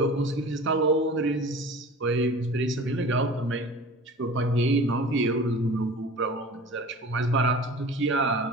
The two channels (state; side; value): normal; both; correlation 0.40